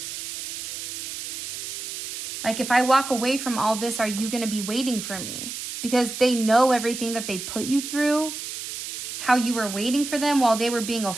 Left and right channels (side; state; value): right; noise; hiss, 7 dB below the sound